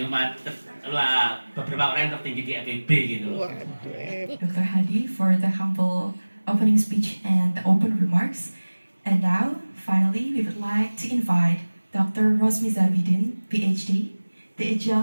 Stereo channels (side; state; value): both; inverted; correlation -1.00